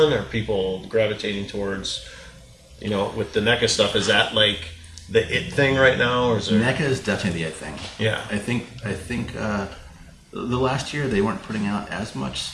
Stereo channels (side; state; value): both; identical; correlation 1.00